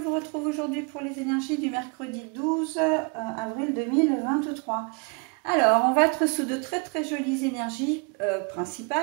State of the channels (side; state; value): left; quieter; 34.4 dB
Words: retrouve aujourd'hui pour les énergies du mercredi 12 avril 2023. Alors, on va être sous de très jolies énergies,